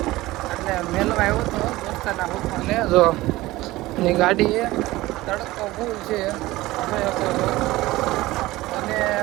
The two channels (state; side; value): quieter; left; 18.4 dB